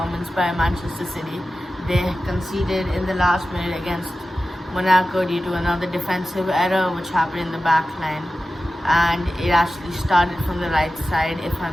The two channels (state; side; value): normal; both; correlation 0.94